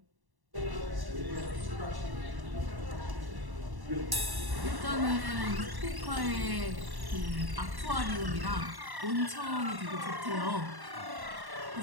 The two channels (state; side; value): late; left; 1.1 ms